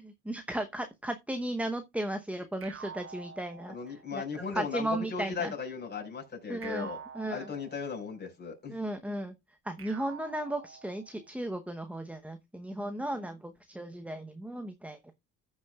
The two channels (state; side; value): normal; both; correlation 0.67